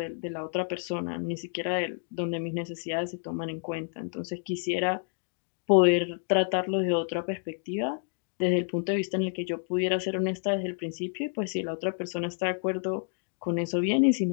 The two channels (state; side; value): silent; right; 58 dB below the other